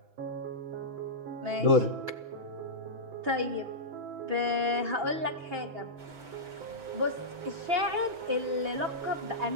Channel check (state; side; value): late; left; 6.0 ms